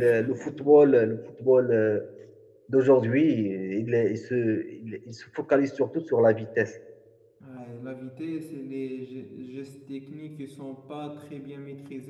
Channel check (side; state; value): both; identical; correlation 1.00